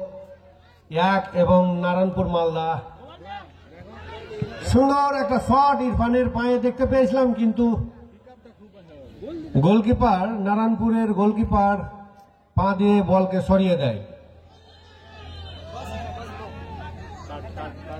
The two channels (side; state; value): both; identical; correlation 1.00